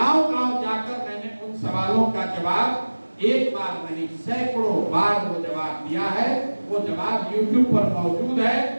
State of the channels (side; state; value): both; inverted; correlation -1.00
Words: गांव जाकर मैंने उन सवालों का जवाब एक बार नहीं सैकड़ों बार वो जवाब दिया है। वो जवाब YouTube पर मौजूद है,